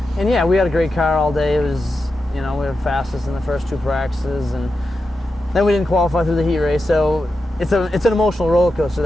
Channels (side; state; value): both; normal; correlation 0.89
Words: And yeah, we had a great car all day. It was, we were fastest in the first 2 practices, and then we didn't qualify through the heat race. So it's an emotional roller coaster,